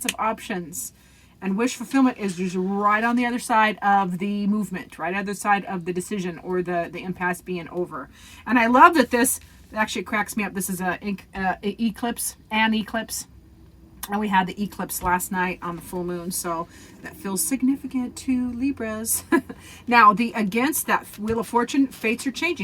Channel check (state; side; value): identical; both; correlation 1.00